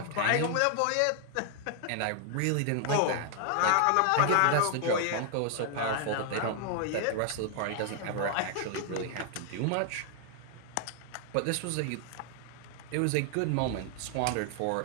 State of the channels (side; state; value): both; different; correlation 0.00